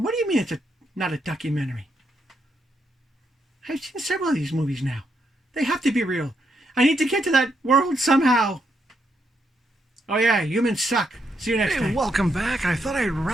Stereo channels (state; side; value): normal; both; correlation 0.78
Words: do you mean it's not a documentary? I've seen several of these movies now. They have to be real. I need to get to that world somehow. Oh yeah, humans suck. See you next time. Welcome back. I thought I'd